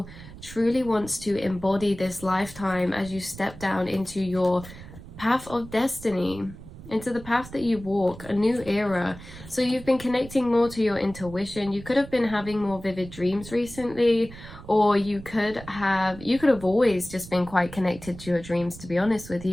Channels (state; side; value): noise; right; rumble, 16 dB below the sound